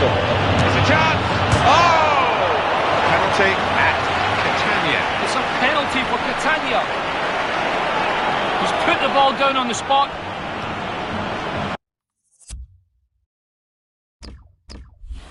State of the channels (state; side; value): identical; both; correlation 1.00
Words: It's a chance. Oh! Penalty at Catania. It's a penalty for Catania. He's put the ball down on the spot.